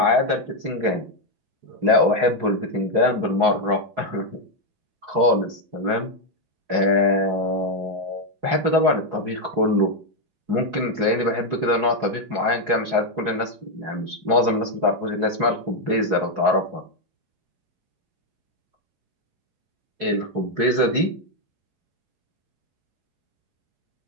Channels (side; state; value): left; late; 4.7 ms